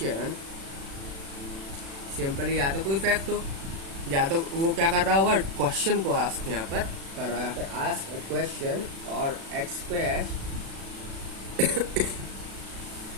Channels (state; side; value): late; left; 36 ms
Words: simply या तो कोई फैक्ट हो, या तो वो क्या कर रहा होगा, क्वेश्चन को आस्क यहाँ पर कर रहा है, यहाँ पर आस्क अ क्वेश्चन और express